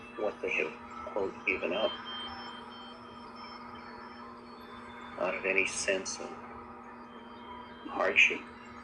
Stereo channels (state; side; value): identical; both; correlation 1.00